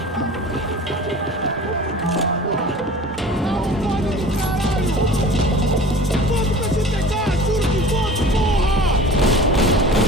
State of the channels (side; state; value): both; normal; correlation 0.41